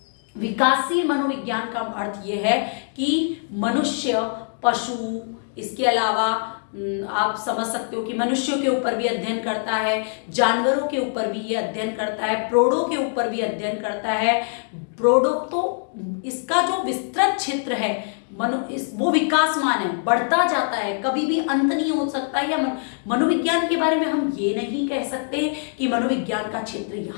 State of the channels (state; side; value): silent; right; digital silence